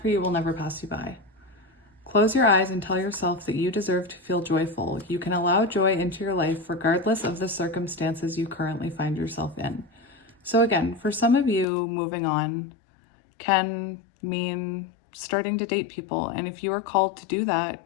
you will never pass you by. Close your eyes and tell yourself that you deserve to feel joyful. You can allow joy into your life regardless of the circumstances you currently find yourself in. So again, for some of you, moving on can mean starting to date people. And if you are called to do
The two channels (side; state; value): right; drops out; at 11.7 s